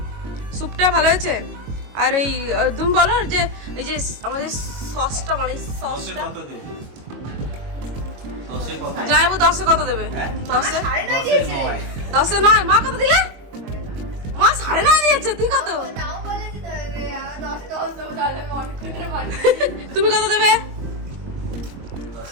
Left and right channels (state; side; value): late; left; 22 ms